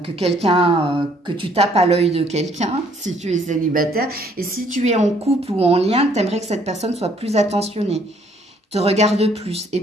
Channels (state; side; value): normal; both; correlation 0.63